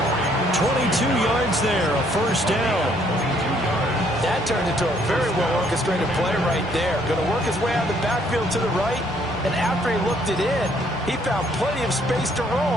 22 yards there, a first down. That turned into a very well-orchestrated play right there. Going to work his way out of the backfield to the right. And after he looked it in, he found plenty of space to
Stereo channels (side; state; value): both; normal; correlation 0.66